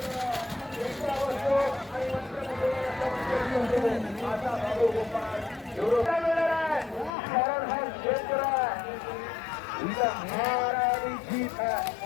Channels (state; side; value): drops out; right; at 7.1 s